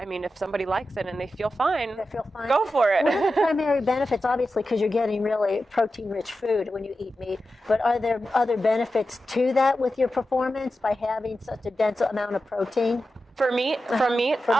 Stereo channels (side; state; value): both; normal; correlation 0.91